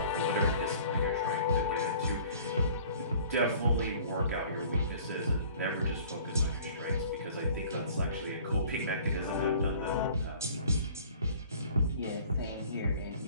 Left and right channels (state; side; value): inverted; both; correlation -0.50